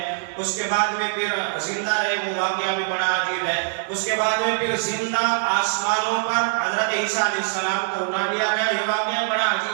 اس کے بعد میں پھر زندہ رہے وہ واقعہ بھی بڑا عجیب ہے، اس کے بعد میں پھر زندہ آسمانوں پر حضرت عیسیٰ علیہ السلام کو اٹھا لیا گیا، یہ واقعہ بڑا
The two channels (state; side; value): silent; left; digital silence